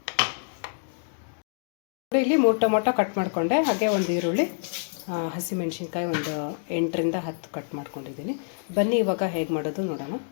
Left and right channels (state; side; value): silent; right; digital silence